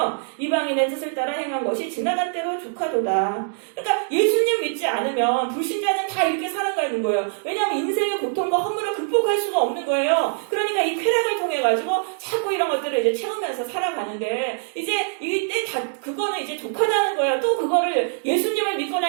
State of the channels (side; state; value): left; silent; 60 dB below the other